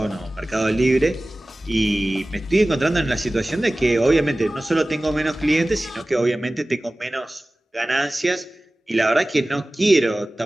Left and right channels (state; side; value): normal; both; correlation 0.97